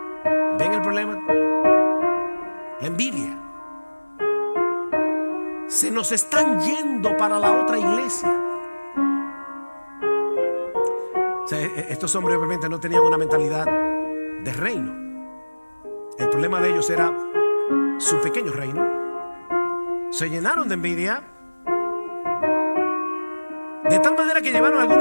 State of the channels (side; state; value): both; inverted; correlation -1.00